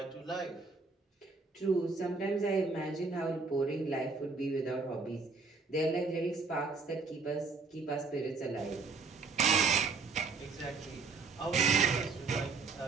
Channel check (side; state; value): left; quieter; 4.3 dB